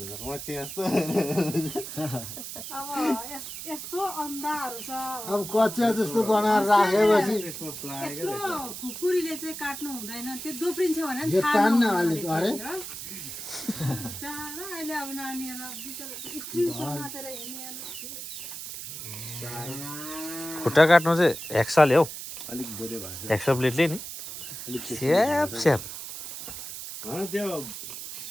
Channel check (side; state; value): right; noise; hiss, 9 dB below the sound